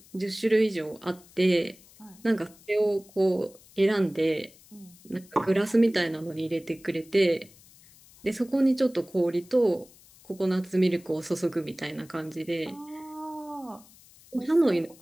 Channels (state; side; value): noise; left; hiss, 25 dB below the sound